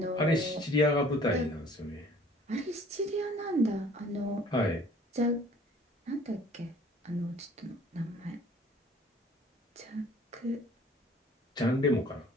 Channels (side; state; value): both; normal; correlation 0.53